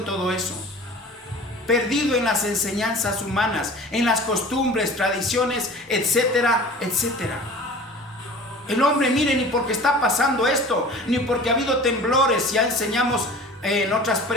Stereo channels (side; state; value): both; normal; correlation 0.41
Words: todo eso, perdido en las enseñanzas humanas, en las costumbres, tradiciones, etcétera, etcétera. El hombre, mire, ni porque está pasando esto, ni porque ha habido temblores, ya enseñamos en otras